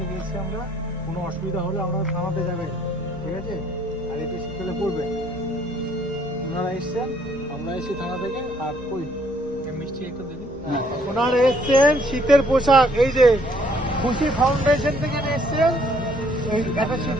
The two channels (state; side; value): normal; both; correlation 0.64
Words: এসেছি আমরা, কোনো অসুবিধা হলে আমরা থানাতে যাবেন, ঠিক আছে? আর এটা শীতকালে পরবেন। ওনারা এসছেন, আমরা এসেছি থানা থেকে। আর কই মিষ্টি একটু দেবেন। ওনারা এসছেন শীতের পোশাক, এই যে খুশি ফাউন্ডেশন থেকে এসছেন, এই একটা